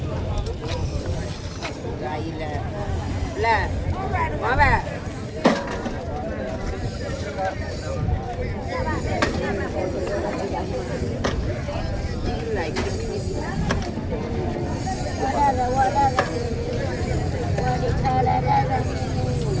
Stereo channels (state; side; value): identical; both; correlation 1.00